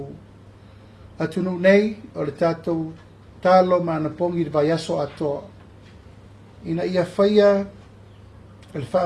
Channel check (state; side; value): identical; both; correlation 1.00